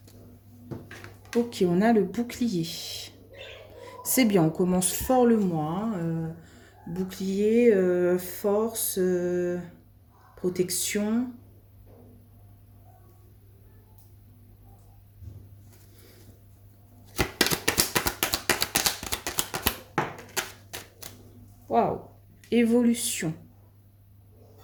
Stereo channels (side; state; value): both; identical; correlation 1.00